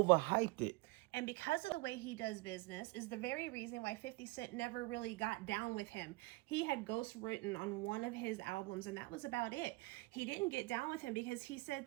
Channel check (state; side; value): quieter; left; 22.9 dB